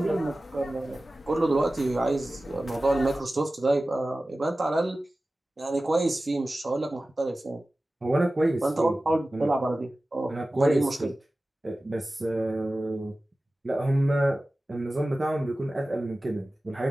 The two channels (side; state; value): both; normal; correlation 0.96